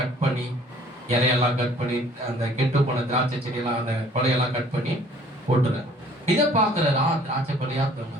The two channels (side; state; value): both; normal; correlation 0.55